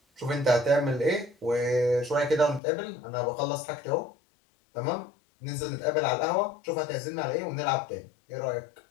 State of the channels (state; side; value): drops out; right; at 2.6 s